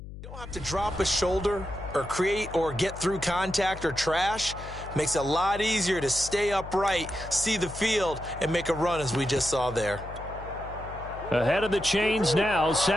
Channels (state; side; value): noise; left; hum, 12 dB below the sound